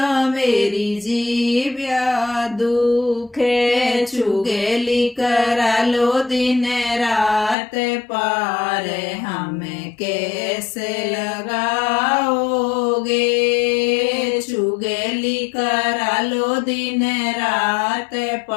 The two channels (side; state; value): right; drops out; at 7.6 s